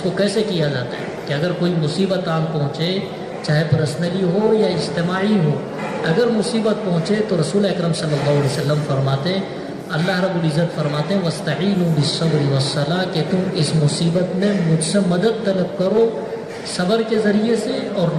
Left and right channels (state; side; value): identical; both; correlation 1.00